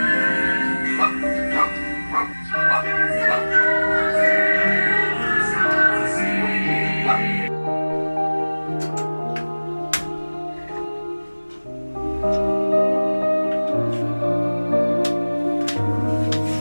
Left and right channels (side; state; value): both; inverted; correlation -1.00